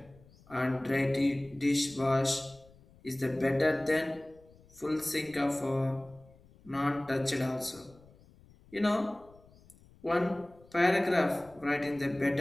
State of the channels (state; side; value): noise; left; rumble, 26 dB below the sound